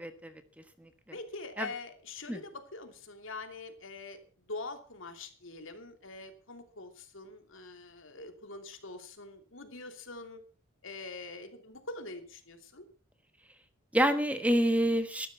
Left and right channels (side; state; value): both; normal; correlation 0.72